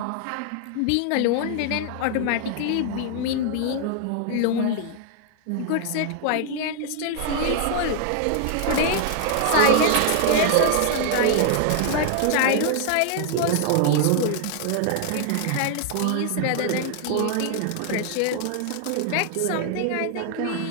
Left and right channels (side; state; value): both; different; correlation 0.00